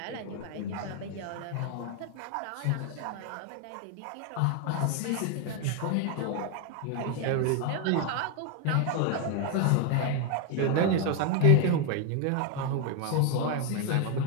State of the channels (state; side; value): different; both; correlation 0.01